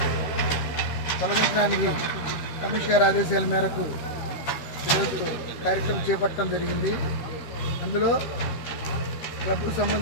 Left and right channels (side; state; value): right; late; 13 ms